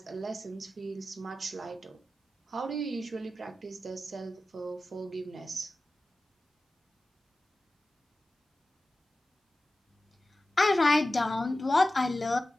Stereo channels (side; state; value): both; normal; correlation 0.94